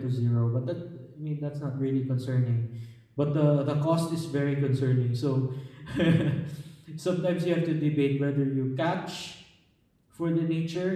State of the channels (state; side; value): identical; both; correlation 1.00